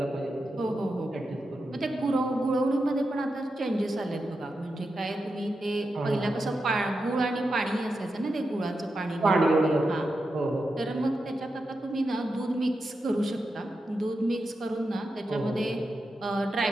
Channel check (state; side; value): normal; both; correlation 0.88